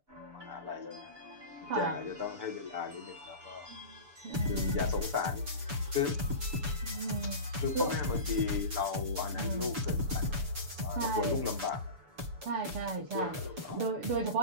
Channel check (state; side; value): late; left; 6.9 ms